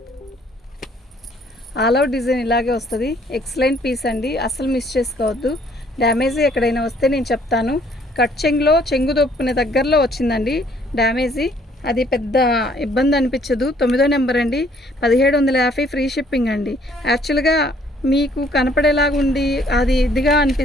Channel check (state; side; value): normal; both; correlation 0.62